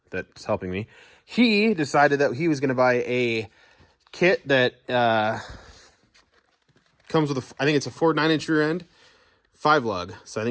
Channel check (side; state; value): both; identical; correlation 1.00